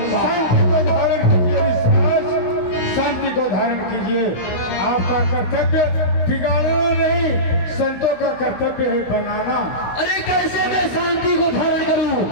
शांति को धारण कीजिए। आपका कर्तव्य बिगाड़ना नहीं, संतों का कर्तव्य है बनाना। अरे कैसे मैं शांति को धारण करूं?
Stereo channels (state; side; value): late; right; 16 ms